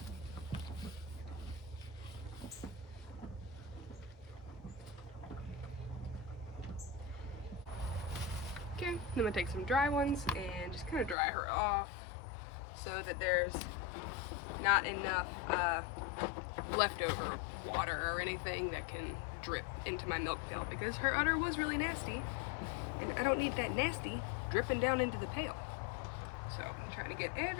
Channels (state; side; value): drops out; right; at 11.2 s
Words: Okay, then I'm gonna take some dry ones and just kind of dry her off so that there's not enough leftover water or anything that can drip into my milk pail, because her udder was really nasty and I don't need that nasty dripping down into the pail. So I'm trying to get